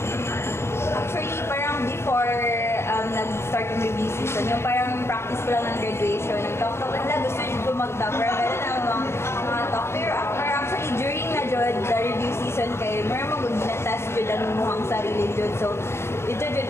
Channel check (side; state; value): right; late; 0.12 ms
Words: Actually, parang before nag-start yung review season, yung parang practice ko lang ng graduation, nag-talk nila, gusto nyo ko mag-top, pero meron ang mga talk. Pero actually, during na jud, the review season kayo, meron mo na-test jud ang muhang sarili jud. So, ito